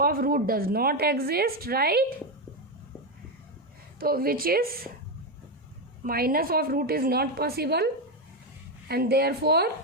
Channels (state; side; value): normal; both; correlation 0.08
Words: root does not exist right. तो which is minus of root is not possible and therefore